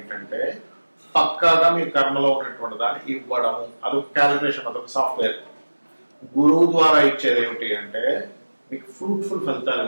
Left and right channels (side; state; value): both; inverted; correlation -1.00